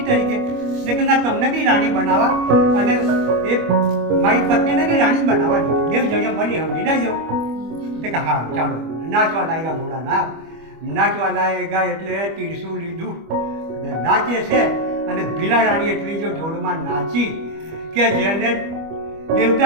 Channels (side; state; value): left; late; 25 ms